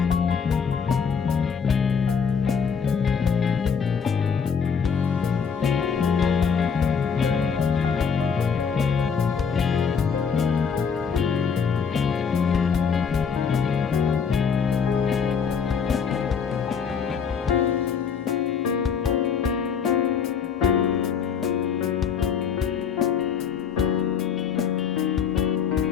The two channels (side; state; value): right; quieter; 6.5 dB